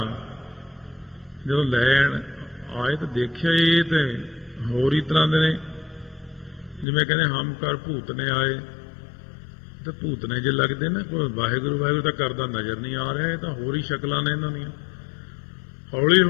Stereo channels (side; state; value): right; drops out; at 6.9 s